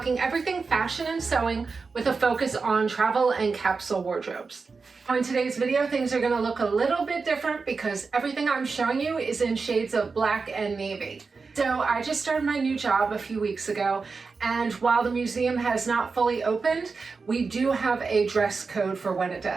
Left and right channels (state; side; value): quieter; left; 4.6 dB